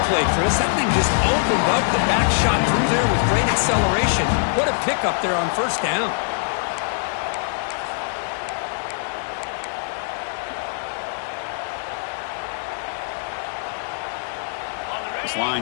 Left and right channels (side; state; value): right; silent; digital silence